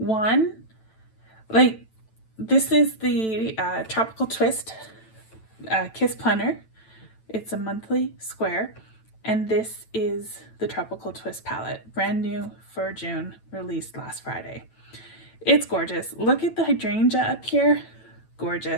this is the Tropical Twist Kiss Planner. It's a monthly square. And this is the Tropical Twist palette. Brand new for June, released last Friday. It's gorgeous. Look at the hydrangea up here.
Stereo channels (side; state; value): right; late; 9.0 ms